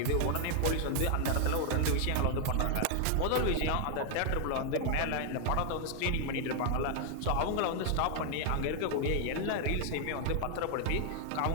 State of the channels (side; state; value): both; different; correlation 0.00